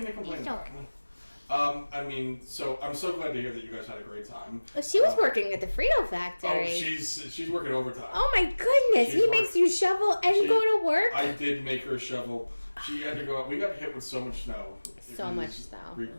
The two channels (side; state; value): both; inverted; correlation -1.00